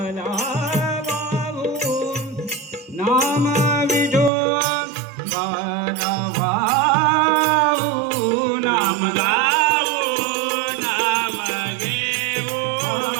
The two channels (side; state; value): left; drops out; at 4.3 s